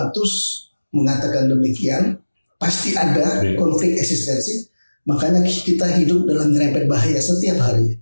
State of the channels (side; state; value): both; inverted; correlation -1.00